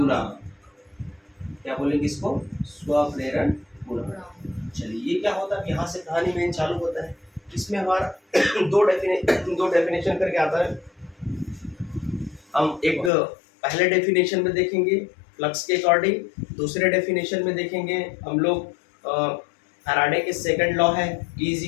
क्या बोलेंगे इसको, स्वप्रेरण गुणांक। चलिए, ये क्या होता है, यहाँ से कहानी मेन चालू होता है। इसमें हमारा दो डेफिनेशन करके आता है। हम एक पहले डेफिनेशन में देखेंगे फ्लक्स के अकॉर्डिंग, दूसरे डेफिनेशन में देखेंगे हम लोग फैराडे के सेकंड लॉ है, E is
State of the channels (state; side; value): drops out; right; at 13.1 s